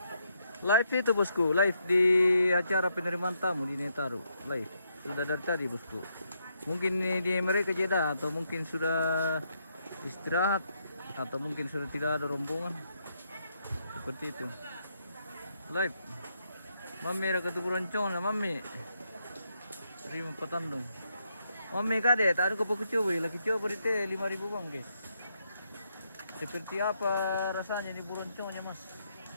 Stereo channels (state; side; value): inverted; both; correlation -0.78